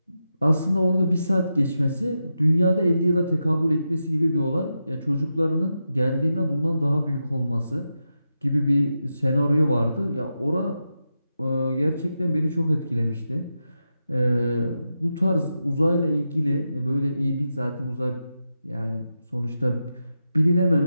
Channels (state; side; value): inverted; both; correlation -0.88